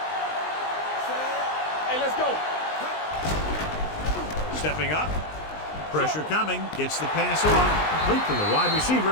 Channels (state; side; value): late; right; 19 ms